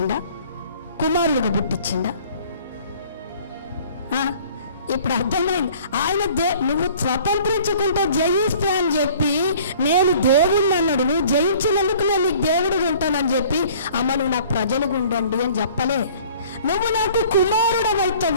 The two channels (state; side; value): inverted; both; correlation -0.52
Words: కుమారుడుగా పుట్టించిండా? ఇప్పుడు అర్థమైంది. ఆయన నువ్వు స్వతంత్రించుకుంటే జయిస్తే అని చెప్పి నేను దేవుడిని అన్నాడు. నువ్వు జయించినందుకు నేను నీకు దేవుడు ఉంటానని చెప్పి, అమ్మ నువ్వు నాకు ప్రజలుగా ఉండండి అని చెప్పలే. నువ్వు నాకు కుమారుడు